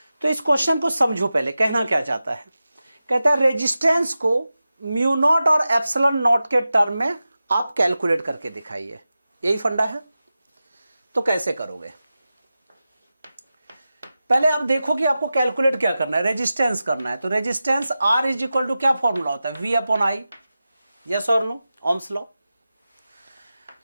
तो इस क्वेश्चन को समझो पहले, कहना क्या चाहता है। कहता है रेजिस्टेंस को म्यू नॉट और एप्सिलॉन नॉट के टर्म में आप कैलकुलेट करके दिखाइए, यही फंडा है। तो कैसे करोगे, पहले आप देखो कि आपको कैलकुलेट क्या करना है, रेजिस्टेंस करना है। तो resistance R is equal to क्या फॉर्मूला होता है, वी अपॉन आई, यस और no, Ohm's law.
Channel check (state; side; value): inverted; both; correlation -0.94